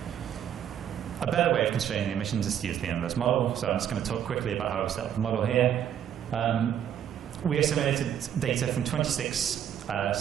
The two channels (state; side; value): quieter; left; 9.6 dB